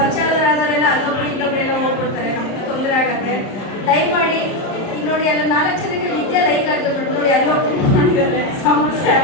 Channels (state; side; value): late; right; 30 ms